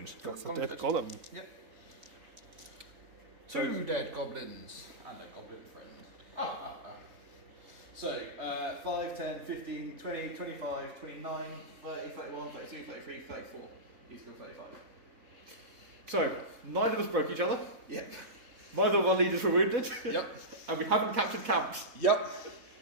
That's a dead golem. Yep. So- 2 dead goblins and a goblin friend. So, 5, 10, 15, 20, 25, 29, 30, 31, 32, 33, 34. He's got 35. So, neither of us broke each other. Yep. Neither of our leaders were wounded. Yep. And we haven't captured camps. Yep.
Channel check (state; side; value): late; left; 4.0 ms